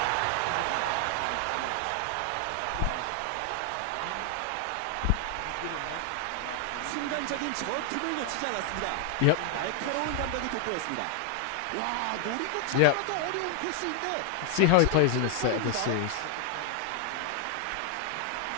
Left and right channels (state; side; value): different; both; correlation 0.00